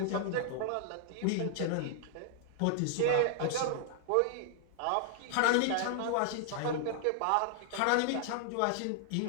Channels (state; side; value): different; both; correlation 0.00